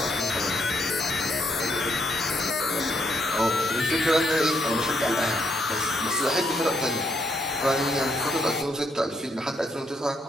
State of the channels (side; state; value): both; normal; correlation 0.75